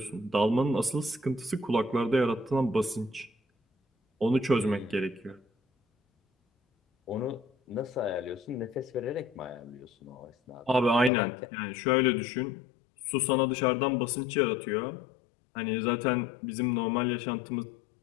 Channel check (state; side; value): drops out; right; at 11.1 s